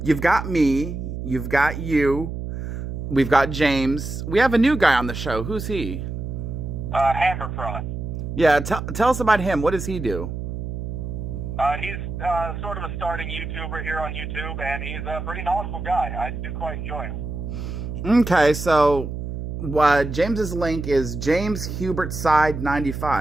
you've got me, you've got you, we've got James. We have a new guy on the show. Who's he? Hammer Fraud. Yeah, tell us about him. What does he do? He's sort of a starting YouTuber here on YouTube, and he's a pretty knowledgeable guy. I do quite enjoy him. Okay, so James's link is James Hubert Side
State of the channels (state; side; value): noise; right; hum, 6 dB below the sound